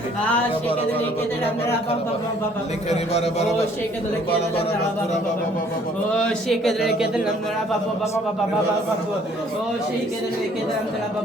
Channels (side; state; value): both; normal; correlation 0.60